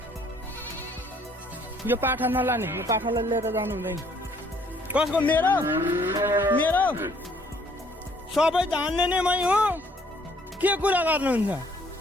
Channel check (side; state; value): both; normal; correlation 0.62